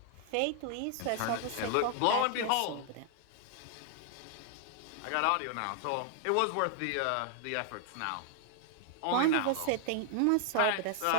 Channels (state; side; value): different; both; correlation 0.00